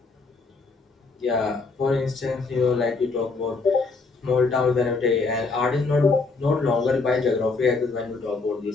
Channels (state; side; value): quieter; right; 4.0 dB